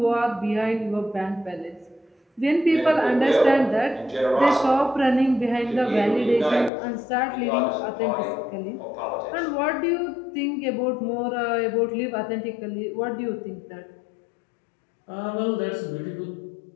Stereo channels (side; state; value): right; drops out; at 6.7 s